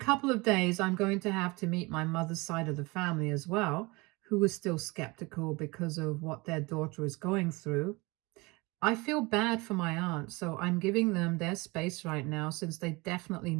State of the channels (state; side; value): quieter; left; 24.8 dB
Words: of days, I'm going to have to meet my mother's side of the family as well, who is still skeptical because of what their daughter is going through. I feel bad for my aunt, so I'm giving them their space right now since they definitely